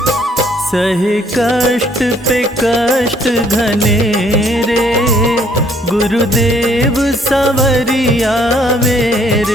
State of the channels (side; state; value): both; normal; correlation 0.64